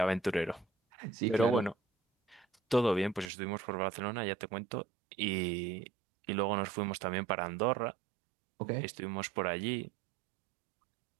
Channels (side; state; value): left; drops out; at 3.3 s